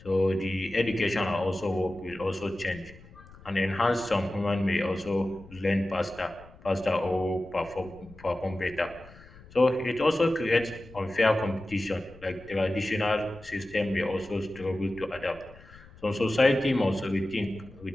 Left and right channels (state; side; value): noise; left; rumble, 21 dB below the sound